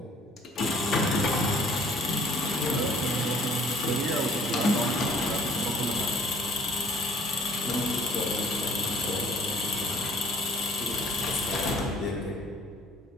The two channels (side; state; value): both; normal; correlation 0.56